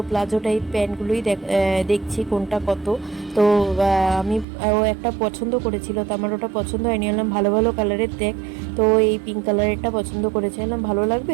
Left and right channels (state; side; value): drops out; left; at 4.5 s